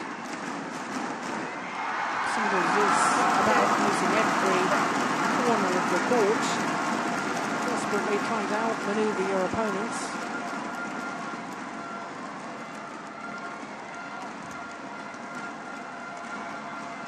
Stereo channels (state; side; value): identical; both; correlation 1.00